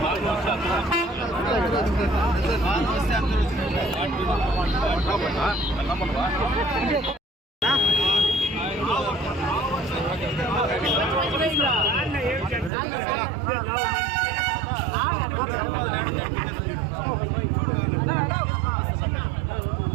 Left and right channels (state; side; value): drops out; left; at 12.7 s